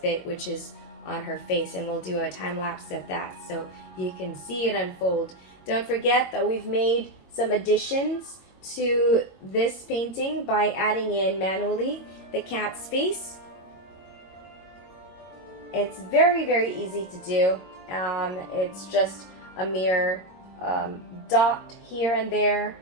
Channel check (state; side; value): late; right; 22 ms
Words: bit, which is on her face, and we'll do a time lapse of that so you can see it unfold. Don't forget that we've made some additions to this painting by adding in manually the cat's face. It's very, very easy to do. It's just a mere dot here and there,